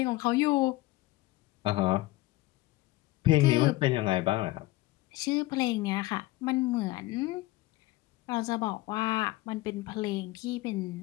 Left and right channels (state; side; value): quieter; right; 18.8 dB